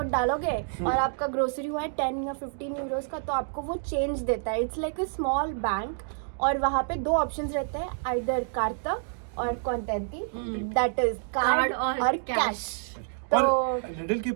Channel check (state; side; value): silent; left; digital silence